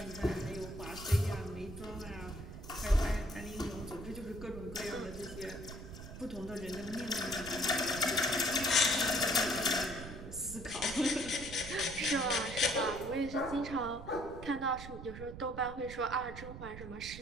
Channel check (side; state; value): right; noise; rumble, 11 dB below the sound